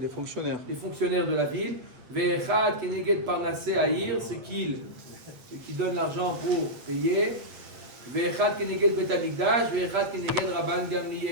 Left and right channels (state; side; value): late; left; 8.1 ms